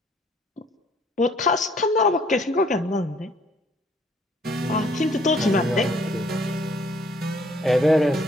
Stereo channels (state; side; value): normal; both; correlation 0.63